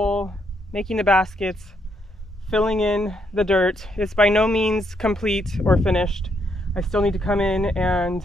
making the baskets, filling in the dirt. It's by no means complete or finished. I still need to come in and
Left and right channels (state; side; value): normal; both; correlation 0.75